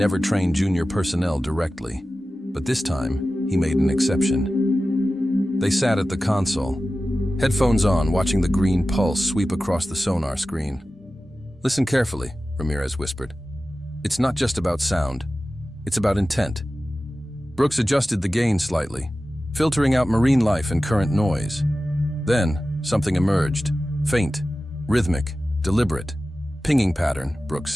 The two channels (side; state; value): both; normal; correlation 0.95